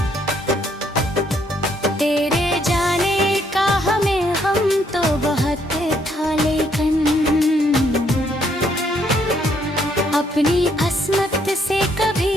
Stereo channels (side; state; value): both; normal; correlation 0.70